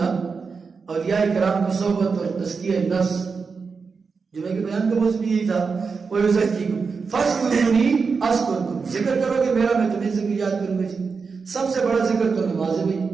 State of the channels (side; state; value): left; quieter; 5.1 dB